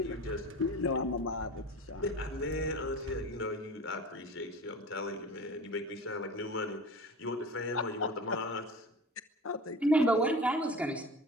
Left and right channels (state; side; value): normal; both; correlation 0.36